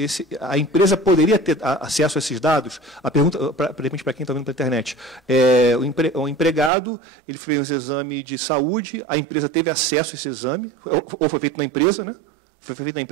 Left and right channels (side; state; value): left; drops out; at 6.7 s